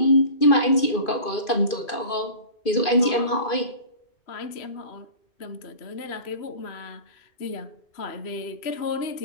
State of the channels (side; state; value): right; late; 2.5 ms